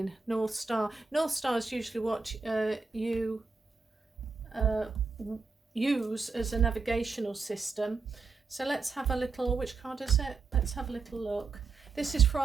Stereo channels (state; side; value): quieter; left; 4.4 dB